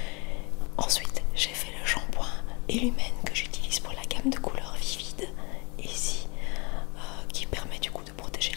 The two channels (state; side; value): quieter; right; 30.3 dB